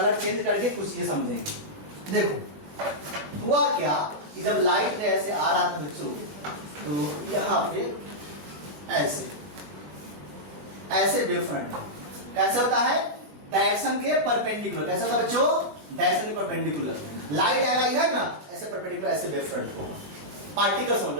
चेंज करके कुछ चीजें समझेंगे। देखो हुआ क्या कि जब लाइट ऐसे आ रहा था बच्चों, तो यहाँ पे ऐसे ऐसे वेव फ्रंट कैसे होता है? डायरेक्शन के परपेंडिकुलर। कैसा होता है बच्चों? डायरेक्शन के परपेंडिकुलर। लाइट आएगा इधर ना, ऐसे परपेंडिकुलर ऐसे वेव फ्रंट होगा। पार्टिकल समझ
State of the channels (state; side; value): late; left; 20 ms